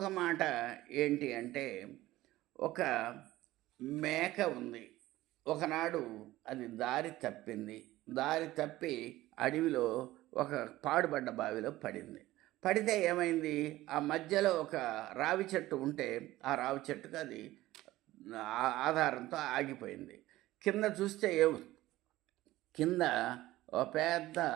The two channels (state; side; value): quieter; left; 16.6 dB